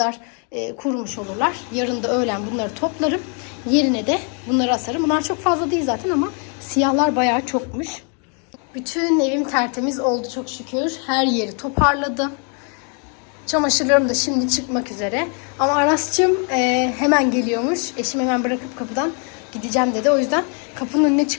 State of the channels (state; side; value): quieter; right; 39.4 dB